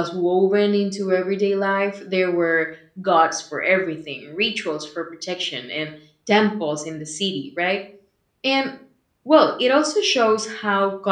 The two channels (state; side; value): identical; both; correlation 1.00